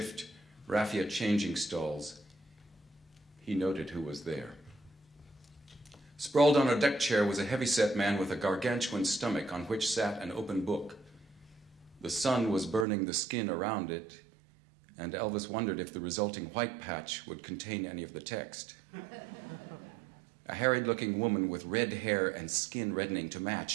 raffia changing stalls, he noted who was there. Sprawled on a deck chair was a heavy-set man with a gargantuan stomach on which sat an open book. The sun was burning the skin around it, and Elvis wondered if the resulting white patch would contain any of the text. A harried-looking woman with red hair and skin reddening to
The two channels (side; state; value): left; drops out; at 12.9 s